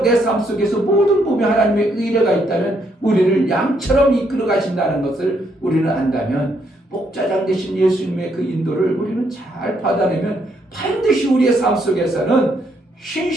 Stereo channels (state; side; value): normal; both; correlation 0.73